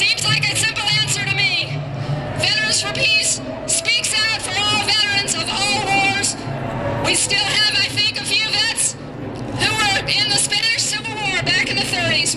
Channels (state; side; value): identical; both; correlation 1.00